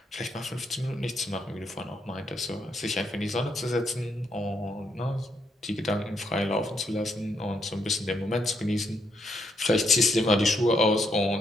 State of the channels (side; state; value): both; normal; correlation 0.76